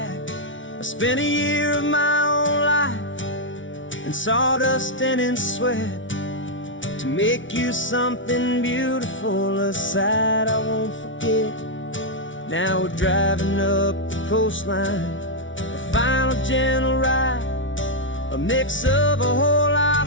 I spent a year of my own life in sawdust and in sweat to make you something beautiful, a sight I won't forget. Now we're driving up the coastline, a final gentle ride, a mix of a whole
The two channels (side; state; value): right; late; 0.56 ms